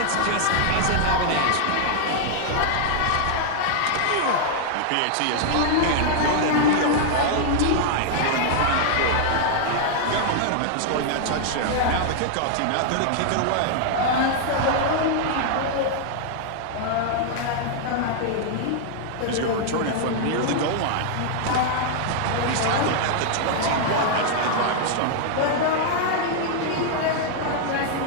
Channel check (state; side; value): different; both; correlation 0.00